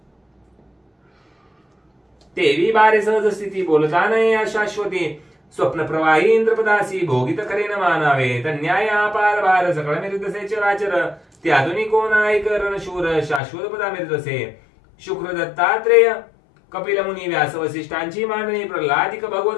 तेवी बारे सहज स्थिती, बोलता नये अशाश्वती, स्वप्न प्रवाही इंद्रपदासी, भोगित करेन मानावे, तन्याय अपार भार, सकळ मिरतसे चराचर, त्यातून कोण ऐकरण शूर, शाश्वत पदा मिरतसे, शुक्र दत्तात्रेय कपिल मुनी व्यास वसिष्ठांची मांडणी, प्रल्हादिक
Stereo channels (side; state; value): right; drops out; at 13.4 s